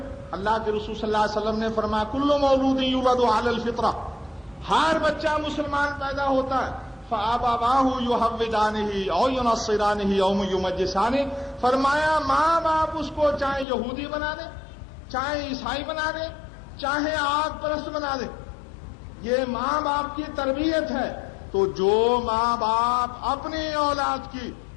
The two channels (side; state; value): right; drops out; at 13.7 s